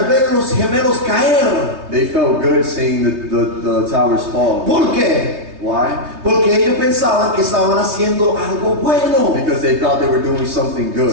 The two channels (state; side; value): late; left; 3.3 ms